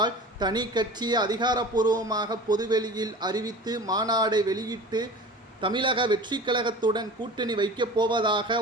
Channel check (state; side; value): normal; both; correlation 0.38